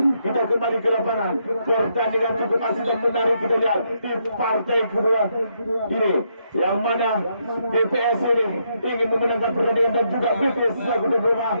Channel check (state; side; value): inverted; both; correlation -0.77